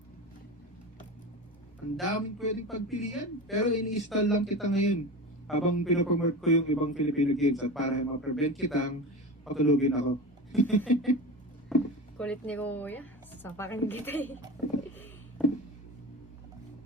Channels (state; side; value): normal; both; correlation 0.28